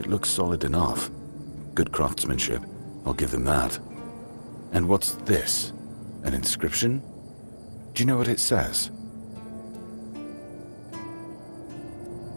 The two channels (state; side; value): inverted; both; correlation -1.00